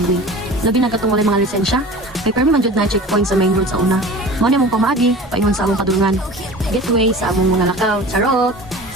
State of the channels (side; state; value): both; normal; correlation 0.39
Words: Labi na katong walay mga lisensya, kay permi man jud na checkpoint sa main road sa una. Mao na mong pamaagi paingon sa among padulungan. Gateway sa among mga lakaw, charot.